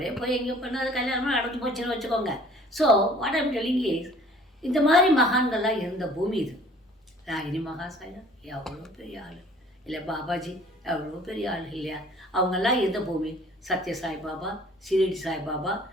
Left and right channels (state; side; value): normal; both; correlation 0.52